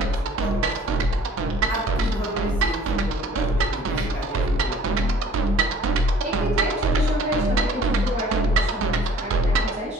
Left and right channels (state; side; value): normal; both; correlation 0.53